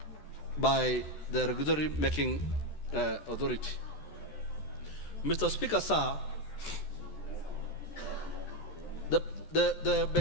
by the regulatory making authority. Mr. Speaker, sir, the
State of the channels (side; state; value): right; late; 14 ms